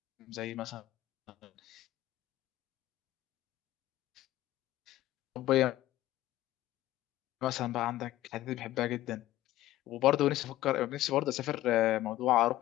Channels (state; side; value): quieter; right; 15.1 dB